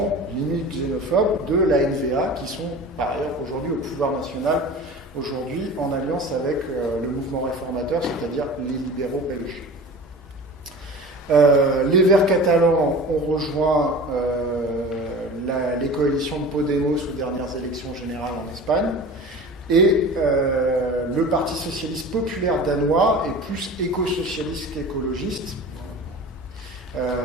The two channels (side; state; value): both; normal; correlation 0.37